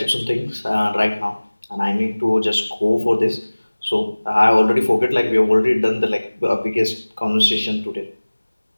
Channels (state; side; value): inverted; both; correlation -1.00